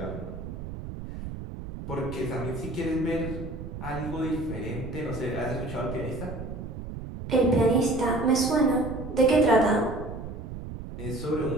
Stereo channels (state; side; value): noise; right; rumble, 9 dB below the sound